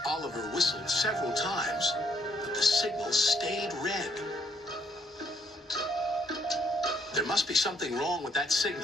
Oliver whistled several times, but the signal stayed red. There must be something wrong with that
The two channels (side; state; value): both; normal; correlation 0.69